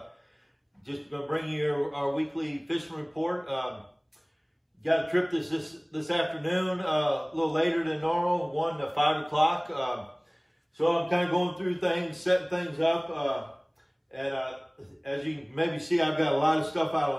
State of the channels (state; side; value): identical; both; correlation 1.00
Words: Just going to bring you our weekly fishing report. Got a trip this afternoon, a little later than normal, 1 to 5 o'clock. So I'm kind of going through things, setting things up. As you can maybe see, I've got a lot of stuff